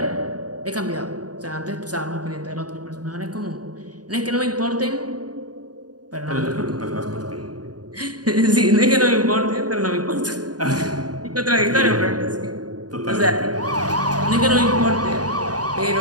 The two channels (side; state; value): left; late; 0.68 ms